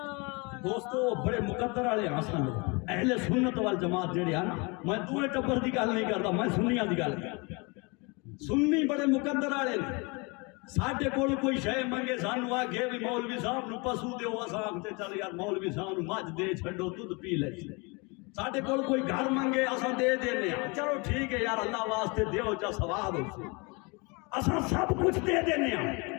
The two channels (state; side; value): quieter; right; 29.3 dB